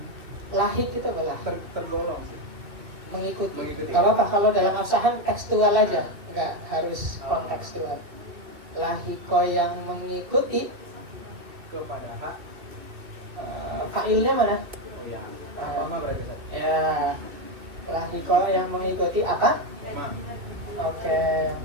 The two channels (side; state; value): left; late; 2.6 ms